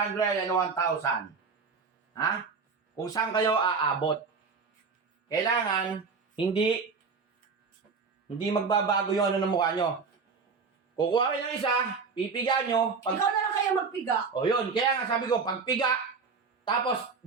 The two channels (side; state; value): left; quieter; 5.1 dB